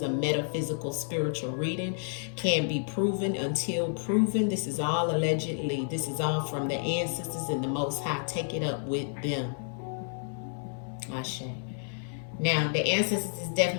a metaphysical spiritual reading. Can't be proven until proven. This is all allegedly. This is all from the ancestors and the Most High. Take it up with them. Ashe. Now, the ancestors is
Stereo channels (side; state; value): right; silent; 58 dB below the other